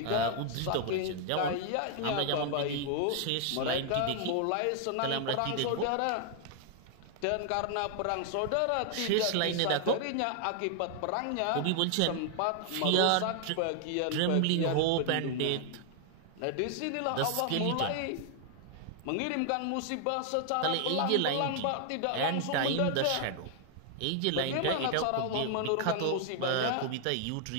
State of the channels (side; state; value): both; different; correlation 0.00